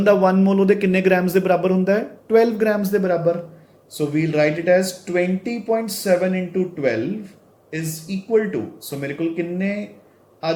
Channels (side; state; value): both; identical; correlation 1.00